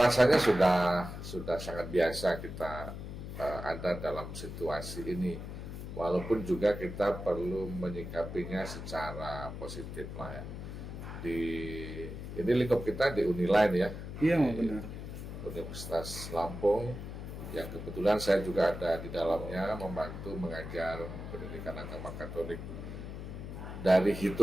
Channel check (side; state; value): left; noise; hum, 8 dB below the sound